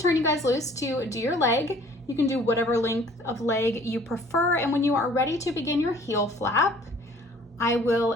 you guys loose to do your leg. You can do whatever length of leg you prefer, and when you are ready to begin your heel flap, I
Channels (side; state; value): both; normal; correlation 0.54